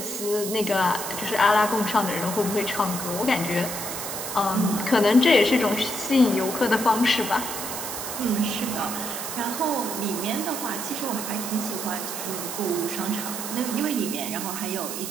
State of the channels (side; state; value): right; noise; hiss, 6 dB below the sound